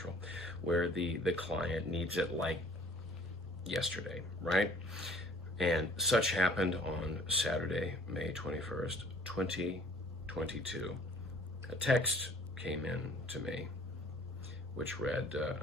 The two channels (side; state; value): both; normal; correlation 0.53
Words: where the client needs it like yesterday, right? And such happened on Saturday, May 21st, 2022. A text came in to me which read,